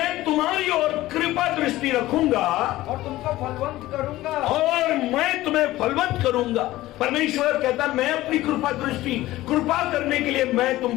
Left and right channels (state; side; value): quieter; right; 16.6 dB